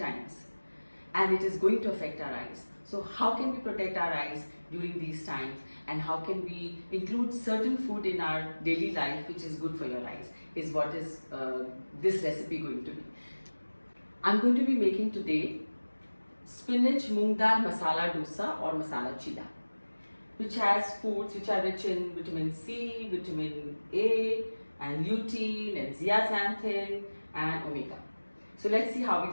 And it is going to affect our eyes. So how can we protect our eyes during these times, and how can we include certain food in our daily life which is good for your eyes, is what is this recipe going to be. I'm going to be making today Spinach Moong Dal Masala Dosa or Masala Chilla, which has foods which are rich in vitamin C, vitamin A and lutein and zeaxanthin and omega. So let's see how we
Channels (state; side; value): inverted; both; correlation -1.00